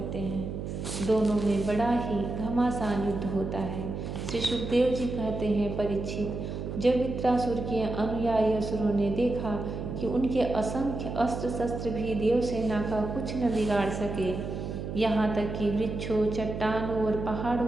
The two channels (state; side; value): noise; right; hum, 5 dB below the sound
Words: हैं। दोनों में बड़ा ही घमासान युद्ध होता है। श्री सुखदेव जी कहते हैं, परीक्षित, जब वृत्रासुर के अनुयायी असुरों ने देखा कि उनके असंख्य अस्त्र शस्त्र भी देवसेना का कुछ न बिगाड़ सके, यहाँ तक कि वृक्षों, चट्टानों और